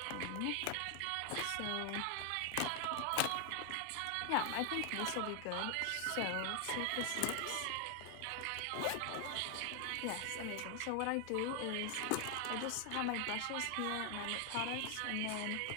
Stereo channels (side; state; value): both; different; correlation 0.00